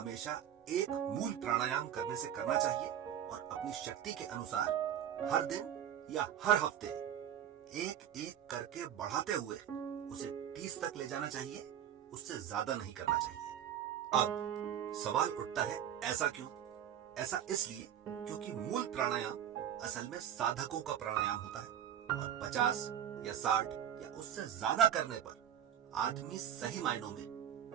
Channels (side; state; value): left; quieter; 10.0 dB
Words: एक मूल प्राणायाम करने से करना चाहिए और अपनी शक्ति के अनुसार हर दिन या हर हफ्ते एक एक करके बढ़ाते हुए उसे 30 तक ले जाना चाहिए, उससे ज्यादा नहीं करना चाहिए। अब सवाल उठता है, ऐसा क्यों? ऐसा इसलिए क्योंकि मूल प्राणायाम असल में साधकों का प्राणायाम होता है और 50 या 60 या उससे ज्यादा करने पर आदमी सही मायनों में